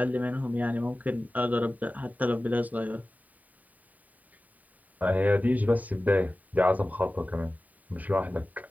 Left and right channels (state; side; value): late; left; 0.075 ms